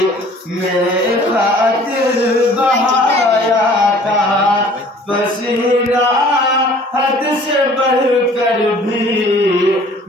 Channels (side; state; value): both; normal; correlation 0.51